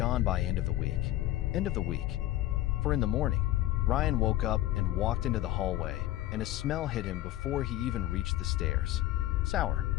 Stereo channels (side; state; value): right; quieter; 14.7 dB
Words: by end of the week. End of the week. For in the morning, Ryan woke up and walked into the hallway, and a smell hit him before he even reached the stairs. Sour.